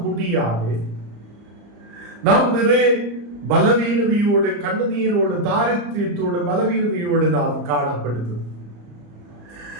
முடியாது. நாம் நிறைய பலவீனதையோடு, கண்ணீரோடு, தாரித்தியத்தோடு, பலவீனதையோடு நாம் காணப்படுது.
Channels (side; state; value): left; late; 34 ms